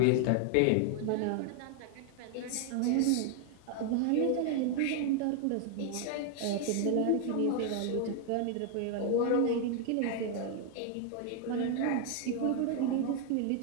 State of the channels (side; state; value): both; different; correlation 0.00